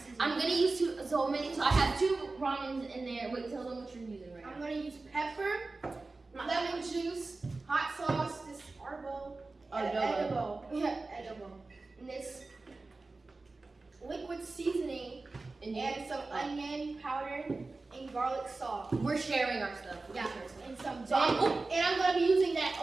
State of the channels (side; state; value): left; quieter; 3.5 dB